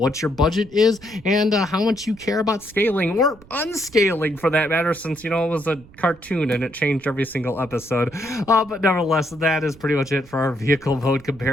your budget is, and how much you care about scaling, or unscaling for that matter, since, it was a cartoon and it changed every single episode. But nevertheless, that is pretty much it for our vehicle mode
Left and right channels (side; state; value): right; noise; rumble, 23 dB below the sound